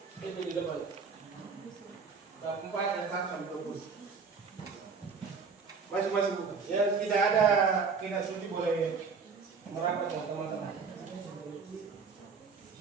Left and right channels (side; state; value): left; quieter; 5.2 dB